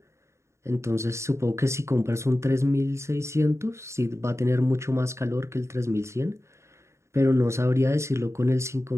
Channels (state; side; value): late; left; 0.14 ms